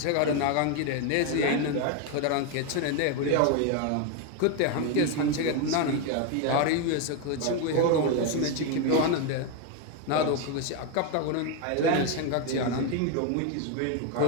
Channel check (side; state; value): both; different; correlation 0.01